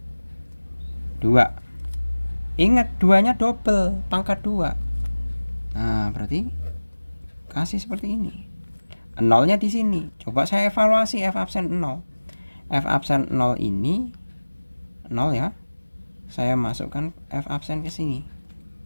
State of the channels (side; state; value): both; inverted; correlation -1.00